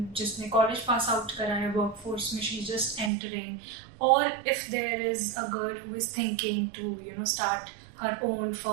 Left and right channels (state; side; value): drops out; left; at 3.1 s